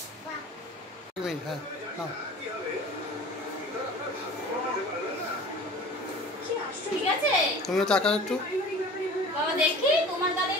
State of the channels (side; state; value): both; normal; correlation 0.41